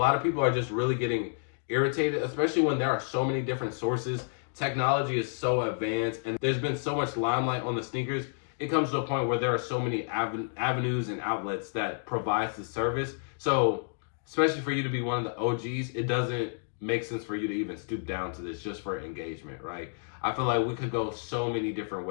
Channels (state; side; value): silent; right; digital silence